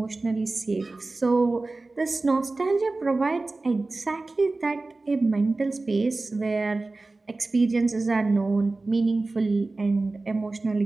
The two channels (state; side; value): quieter; left; 3.3 dB